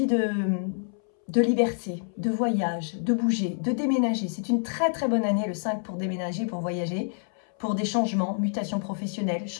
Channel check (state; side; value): silent; right; 60 dB below the other